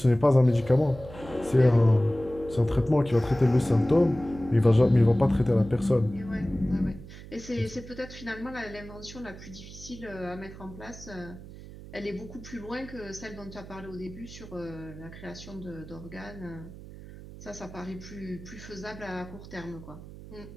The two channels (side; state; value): right; noise; hum, 15 dB below the sound